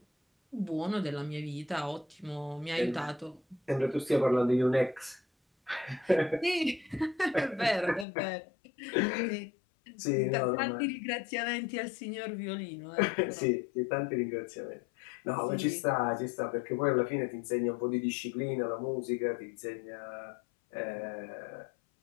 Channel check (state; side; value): drops out; right; at 8.1 s